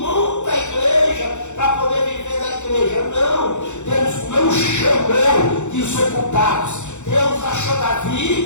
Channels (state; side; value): late; right; 0.84 ms